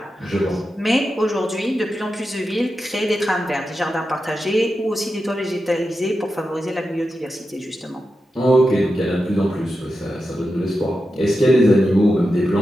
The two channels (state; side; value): normal; both; correlation 0.90